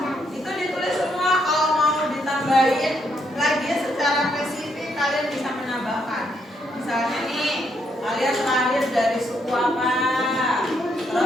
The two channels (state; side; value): normal; both; correlation 0.75